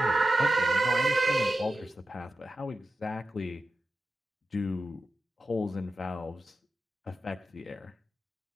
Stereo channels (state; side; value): normal; both; correlation 0.91